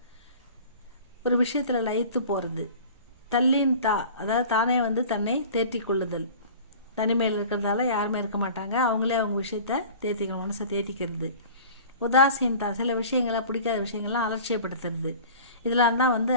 ஒரு விஷயத்தில் லயித்து போகிறது. தள்ளின் அதாவது தானே வந்து தன்னை தேற்றி கொள்ளுதல். தனிமையில் இருக்கிறதால யாருமே இருக்க மாட்டாங்க, அவங்களே அவங்க விஷயத்தை தேத்திக்கணும், மனசை தேத்திக்கிறது. உதாசீனதா, சில விஷயங்களை பிடிக்காத விஷயங்கள்லாம் அலட்சியப்படுத்துறது. இதெல்லாம் தான் வந்து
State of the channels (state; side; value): inverted; both; correlation -0.42